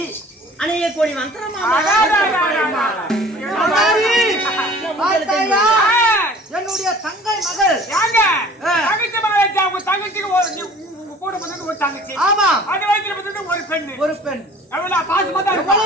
அணியக்கூடிய என்னுடைய தங்கை மகள் தங்கச்சி. ஆமா, அது வயித்துல ஒரு பெண். ஒரு பெண்.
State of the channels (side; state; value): both; normal; correlation 0.48